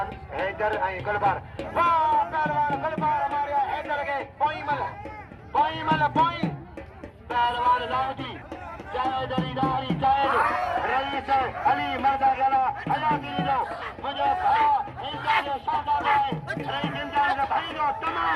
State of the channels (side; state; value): both; identical; correlation 1.00